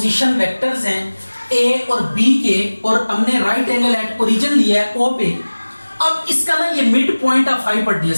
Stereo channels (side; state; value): both; inverted; correlation -1.00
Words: वेक्टर्स हैं A और B के, और हमने राइट एंगल एट ओरिजिन लिया है O पे। अब इसका ना ये मिड पॉइंट ऑफ